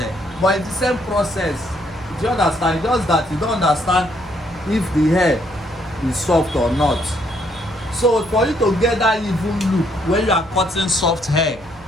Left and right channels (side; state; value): right; noise; hum, 23 dB below the sound